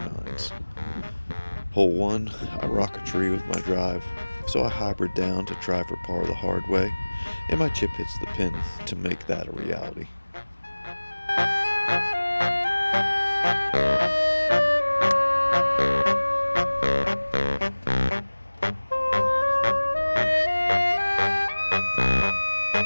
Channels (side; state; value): both; inverted; correlation -1.00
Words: Hole 1, I rock a tree with my drive, so I hybrid down to try for par the hard way, and my chip hits the pin to make that a reality.